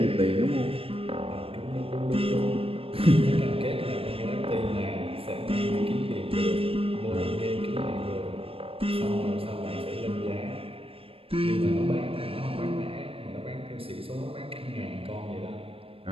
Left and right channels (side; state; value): left; late; 0.27 ms